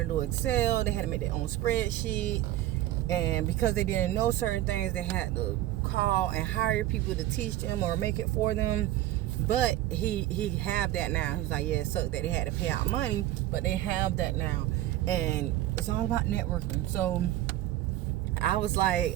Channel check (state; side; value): quieter; left; 14.4 dB